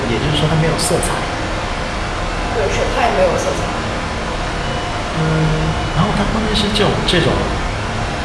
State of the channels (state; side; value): identical; both; correlation 1.00